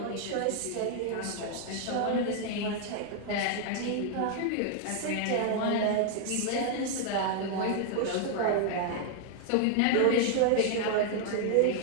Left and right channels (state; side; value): different; both; correlation 0.00